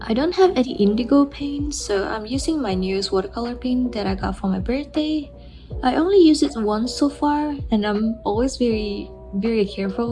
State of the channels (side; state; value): both; identical; correlation 1.00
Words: I don't have any indigo paint, so I'm using my newest watercolor paint that I got for my birthday. I only used it once so far, and I'm always very careful